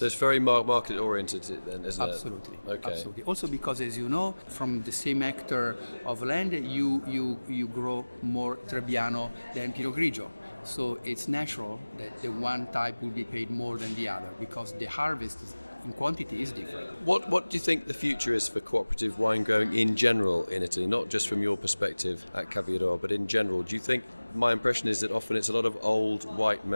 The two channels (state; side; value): inverted; both; correlation -1.00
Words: it's very market oriented then, isn't Absolutely. it? Okay. Absolutely. Also because, as you know, from the same hectare of land, you grow more Trebbiano than Pinot Grigio. So it's natural that the one type will be paid more than the other because the harvest in quantity is different. What do you think the future is for cooperative wine growing in general in Italy, not just from your perspective at CAVIRO, but in general? Do you think, my impression is that often it's a lot of old white